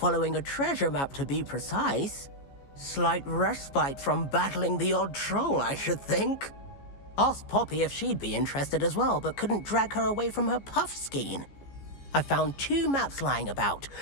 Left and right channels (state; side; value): late; right; 14 ms